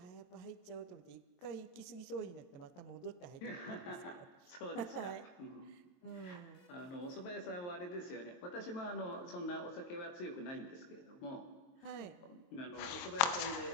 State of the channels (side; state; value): right; late; 23 ms